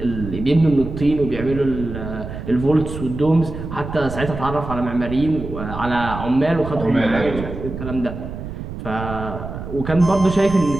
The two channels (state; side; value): noise; right; rumble, 8 dB below the sound